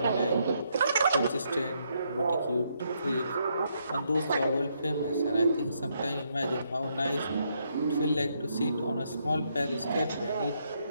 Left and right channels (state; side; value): inverted; both; correlation -0.76